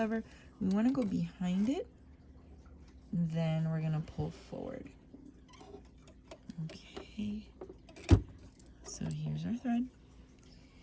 We wanna go behind it. Then we're gonna pull forward. Okay. So here's our thread.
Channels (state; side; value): identical; both; correlation 1.00